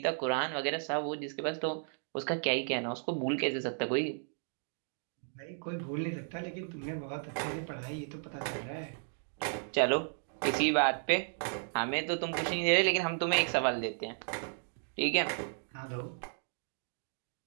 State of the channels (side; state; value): left; silent; digital silence